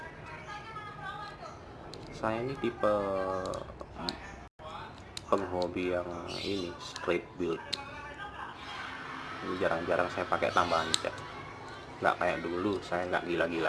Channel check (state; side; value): identical; both; correlation 1.00